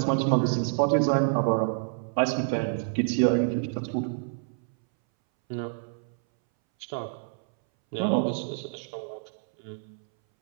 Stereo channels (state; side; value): silent; left; 60 dB below the other